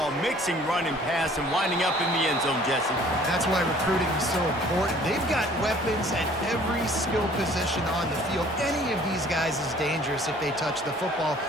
mixing run and pass and winding up in the end zone, Jesse? That's why recruiting is so important. They've got weapons at every skill position on the field. Any of these guys is dangerous if they touch the football.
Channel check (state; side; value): normal; both; correlation 0.54